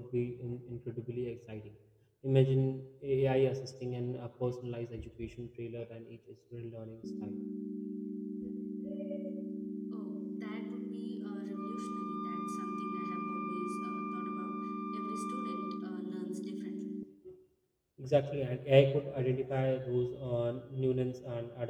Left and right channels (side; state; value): both; identical; correlation 1.00